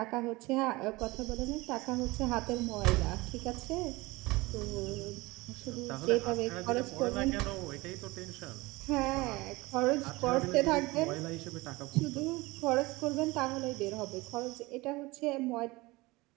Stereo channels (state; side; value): quieter; left; 21.9 dB